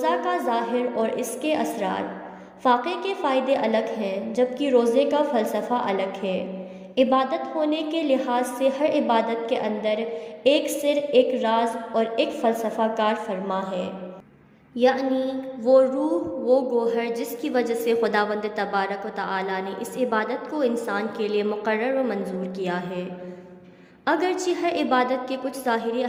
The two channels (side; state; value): both; identical; correlation 1.00